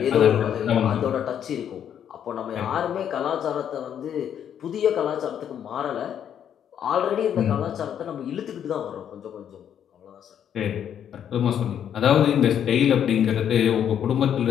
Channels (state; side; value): quieter; right; 9.2 dB